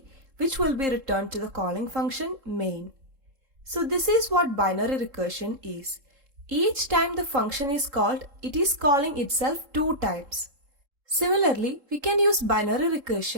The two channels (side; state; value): left; late; 3.7 ms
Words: which will be returned to the calling function main. So this is what binary recursion is. Each time the function is called, it is calling itself 2 times. Similarly, we can use binary